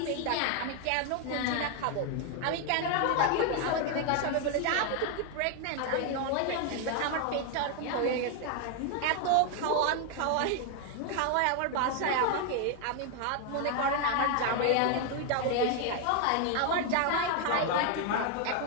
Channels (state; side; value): different; both; correlation 0.00